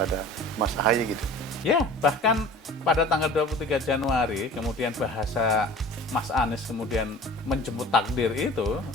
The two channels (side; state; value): both; normal; correlation 0.42